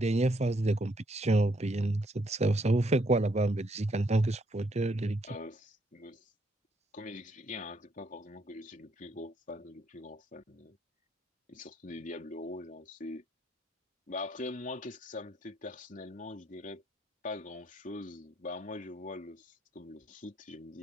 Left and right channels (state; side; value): normal; both; correlation 0.73